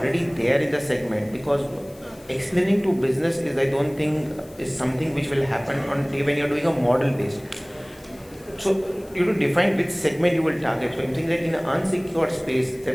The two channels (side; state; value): left; noise; hiss, 26 dB below the sound